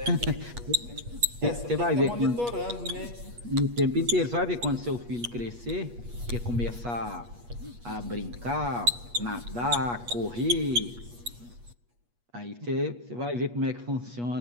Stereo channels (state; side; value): late; left; 8.4 ms